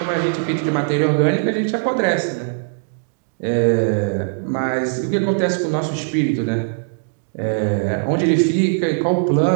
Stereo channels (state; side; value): silent; left; digital silence